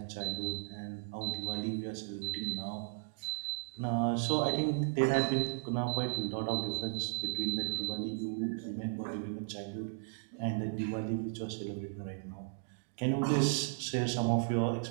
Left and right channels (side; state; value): left; silent; digital silence